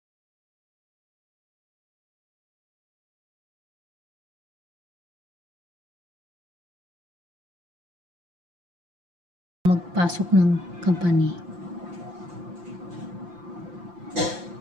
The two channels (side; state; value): left; late; 5.8 ms